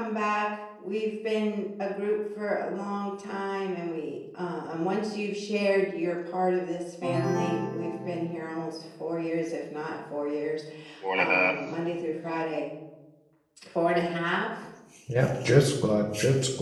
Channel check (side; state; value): both; identical; correlation 1.00